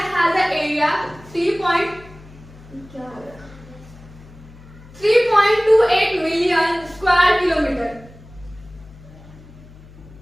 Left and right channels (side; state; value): left; noise; hum, 21 dB below the sound